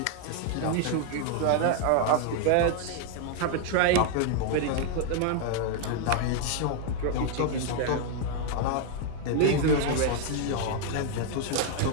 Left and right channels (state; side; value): different; both; correlation 0.00